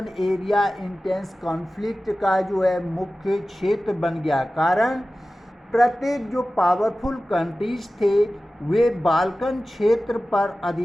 एरिया इंटेंस कॉन्फ्लिक्ट का जो है मुख्य क्षेत्र बन गया। कारण प्रत्येक जो पावरफुल कंट्रीज थे वे बाल्कन क्षेत्र पर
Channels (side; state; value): both; normal; correlation 0.96